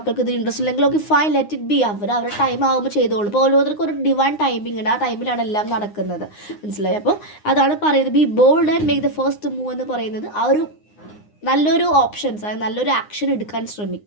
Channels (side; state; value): right; late; 9.7 ms